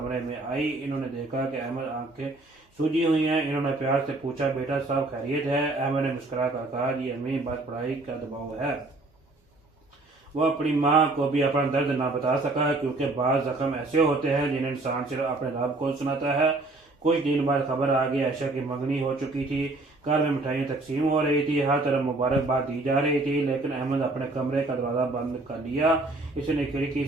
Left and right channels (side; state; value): left; quieter; 3.0 dB